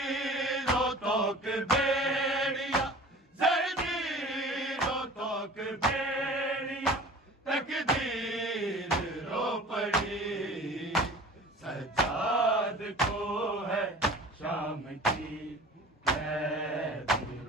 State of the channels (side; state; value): both; normal; correlation 0.42